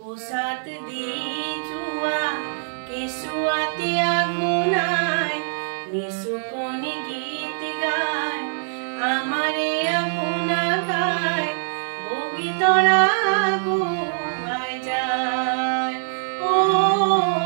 দি যোৱা কেঁচুৱাটি আগুনাই নিচুকনি গীত গায় আমাৰে আগুনা গায় বগী তৰা আগুৱাই যায়।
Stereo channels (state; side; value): silent; left; 63 dB below the other